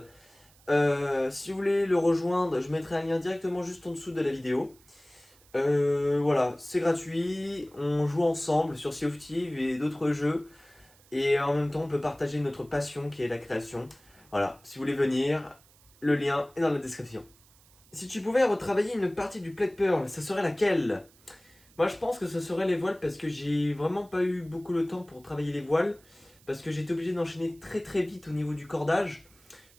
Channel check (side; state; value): right; noise; hiss, 28 dB below the sound